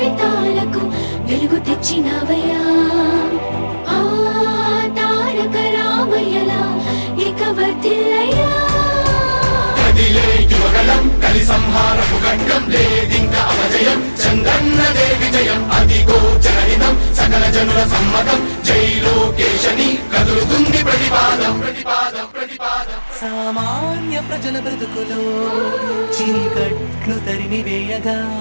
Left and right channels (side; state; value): both; inverted; correlation -1.00